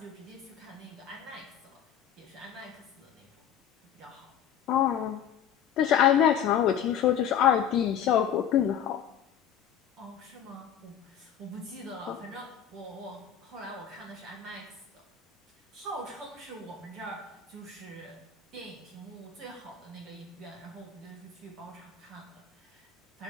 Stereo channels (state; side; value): quieter; right; 9.0 dB